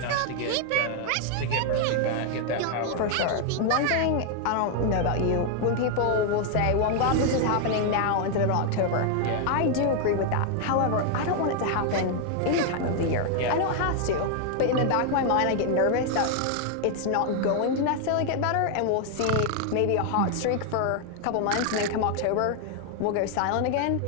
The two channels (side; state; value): both; different; correlation 0.00